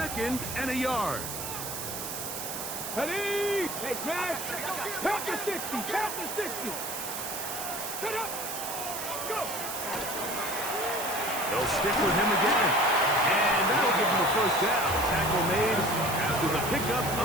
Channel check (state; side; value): noise; right; hiss, 6 dB below the sound